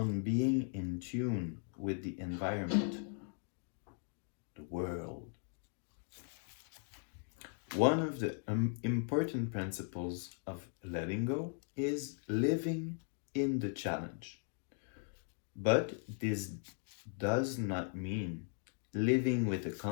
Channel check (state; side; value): silent; right; 52 dB below the other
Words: being in tune with the environment, the world. One of the important principles of letting go is living in the challenge. But this does not mean living with a